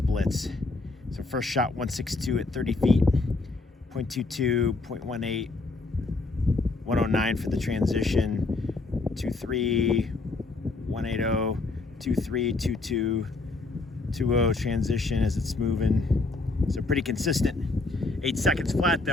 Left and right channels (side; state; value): right; quieter; 3.4 dB